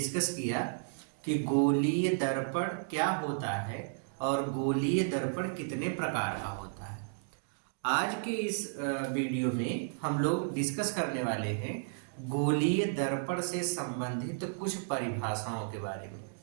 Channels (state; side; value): silent; left; digital silence